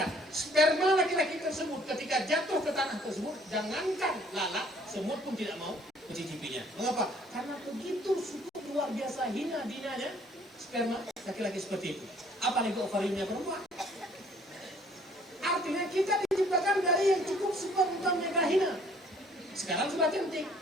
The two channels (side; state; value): both; normal; correlation 0.59